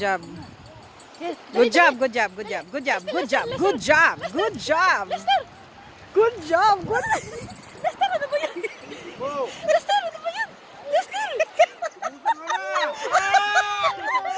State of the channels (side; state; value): both; identical; correlation 1.00